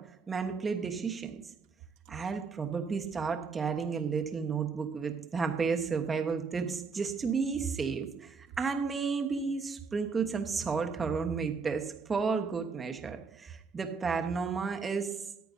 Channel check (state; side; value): quieter; left; 5.1 dB